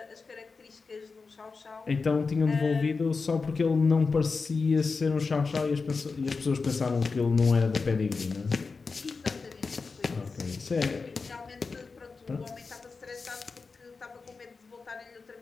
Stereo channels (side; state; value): right; quieter; 4.5 dB